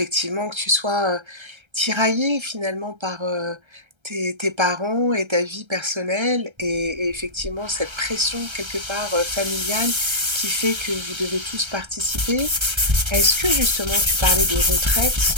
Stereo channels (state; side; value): late; left; 1.3 ms